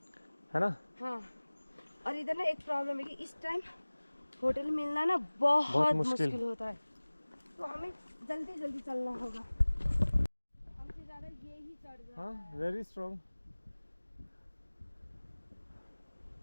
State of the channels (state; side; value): inverted; both; correlation -1.00